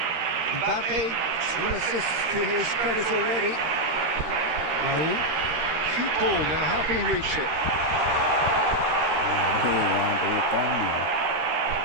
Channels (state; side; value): late; left; 13 ms